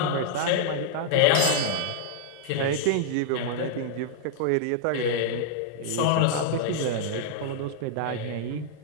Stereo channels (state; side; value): different; both; correlation -0.01